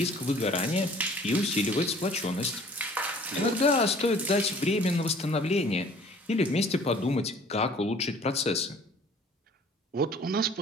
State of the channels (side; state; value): both; normal; correlation 0.52